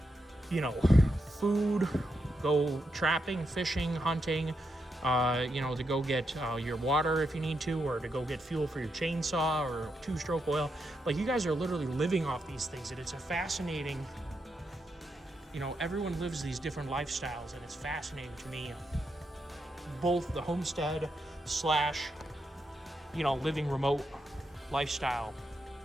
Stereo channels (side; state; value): both; normal; correlation 0.83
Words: food, go trapping, fishing, hunting, to go get your water if you need to, or to go get fuel for your chainsaw or 2-stroke oil. Like, you guys are literally living off these things, and it's a fascinating, everyone lives these different lifestyles, and it's fascinating to me, both the homestead / living remote lifestyle,